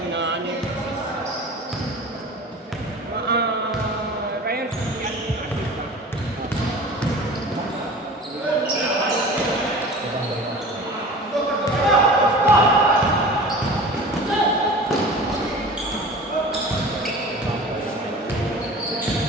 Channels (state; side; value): normal; both; correlation 0.38